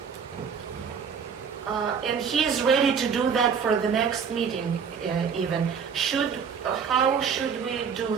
And he is ready to do that for the next meeting, even. How should we do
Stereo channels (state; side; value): quieter; left; 6.6 dB